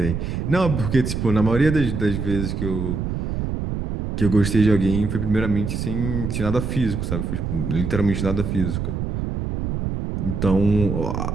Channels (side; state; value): right; noise; rumble, 3 dB below the sound